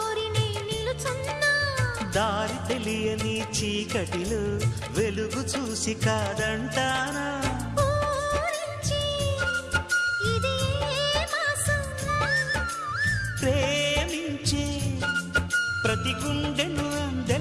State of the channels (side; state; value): both; identical; correlation 1.00